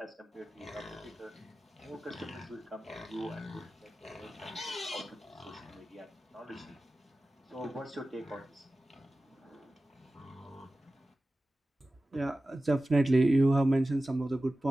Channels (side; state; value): both; normal; correlation 0.95